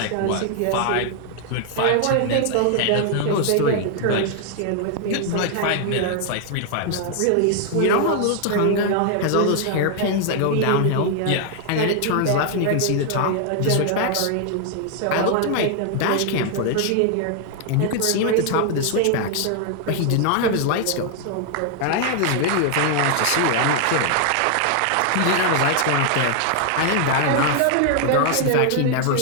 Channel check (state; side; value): different; both; correlation 0.00